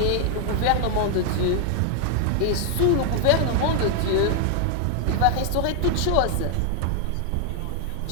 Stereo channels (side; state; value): both; different; correlation 0.00